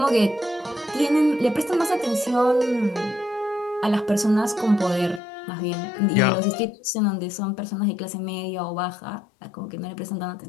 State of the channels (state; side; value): drops out; right; at 5.2 s